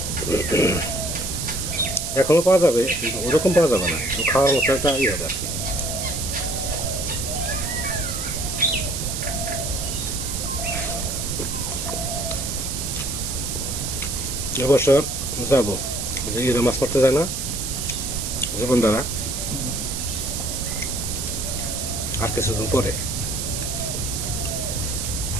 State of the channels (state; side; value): noise; right; hiss, 4 dB below the sound